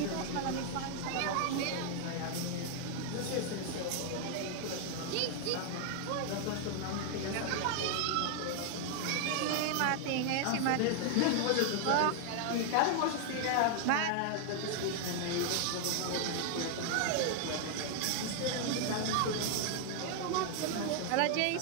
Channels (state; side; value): different; both; correlation 0.00